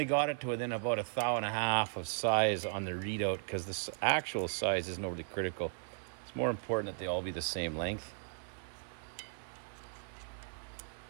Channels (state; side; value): silent; left; 53 dB below the other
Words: got it to within about 1.5 thou of size on the readout because the actual size isn't overly critical. It's more important that they all be the same length.